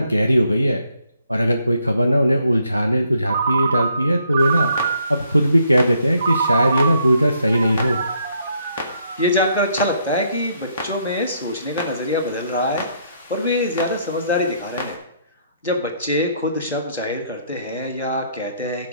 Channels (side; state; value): both; inverted; correlation -0.71